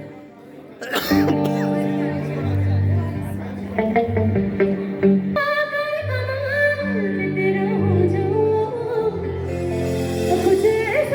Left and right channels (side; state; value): both; identical; correlation 1.00